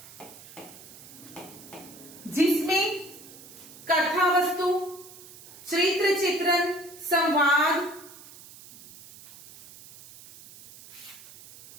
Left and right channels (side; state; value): right; noise; hiss, 19 dB below the sound